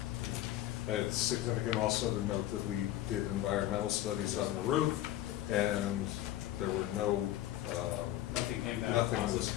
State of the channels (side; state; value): right; quieter; 13.9 dB